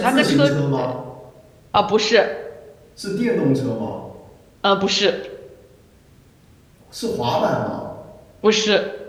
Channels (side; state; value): both; identical; correlation 1.00